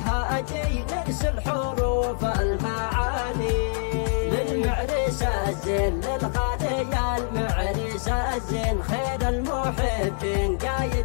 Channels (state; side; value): silent; right; 62 dB below the other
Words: نرسل حروف المعاني. للمعرس الزين للغالي يا المعرس الزين، خير المحبين